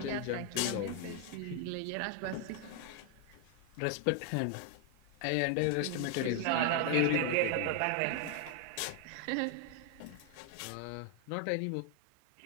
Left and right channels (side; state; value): both; different; correlation 0.00